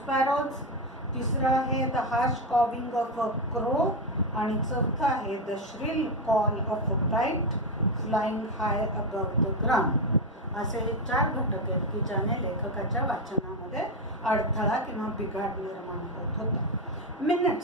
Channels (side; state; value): both; normal; correlation 0.09